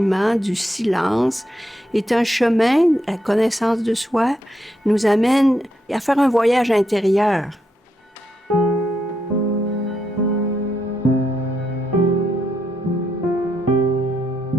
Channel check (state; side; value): normal; both; correlation 0.80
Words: du silence, est un chemin, la connaissance de soi, nous amène à faire un voyage intérieur.